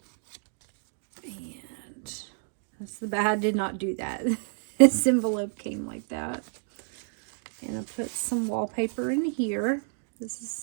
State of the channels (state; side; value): silent; left; 58 dB below the other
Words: And that's the bad. I did not do that. This envelope came like that. And I put some wallpaper in here. This is